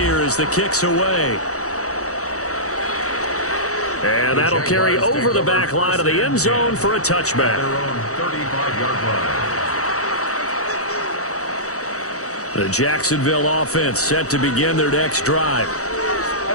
as the kick's away. And that'll carry over the back line of the end zone for a touchback. The Jacksonville offense set to begin their next drive.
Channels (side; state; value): right; late; 0.65 ms